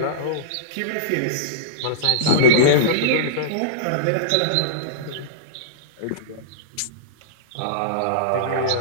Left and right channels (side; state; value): both; different; correlation -0.04